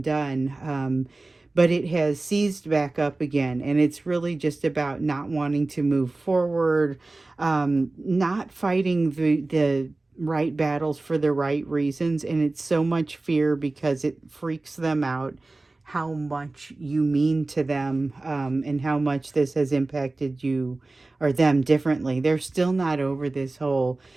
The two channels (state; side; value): quieter; left; 3.2 dB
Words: But it has seized back up again, and it's really just about not wanting to move forward, not fighting the right battles for the right reasons. And it's so much fear because it freaks them out how much you mean to them, and how much this has impacted you or them differently. They're still not over this whole